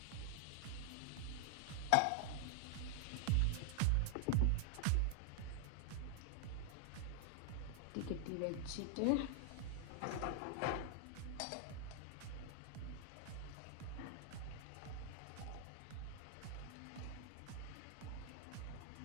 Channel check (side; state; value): both; different; correlation 0.00